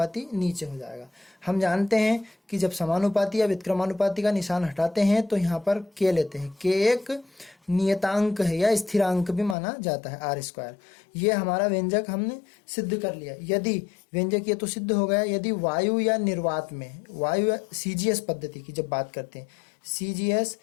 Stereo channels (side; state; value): right; drops out; at 9.6 s